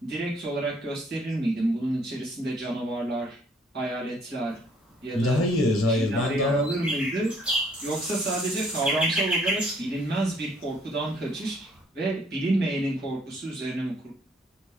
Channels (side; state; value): both; normal; correlation 0.63